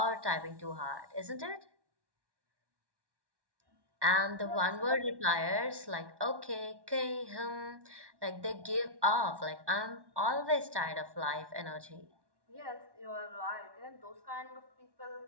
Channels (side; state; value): left; late; 1.1 ms